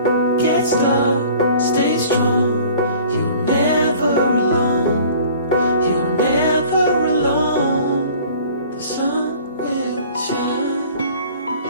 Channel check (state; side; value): inverted; both; correlation -0.48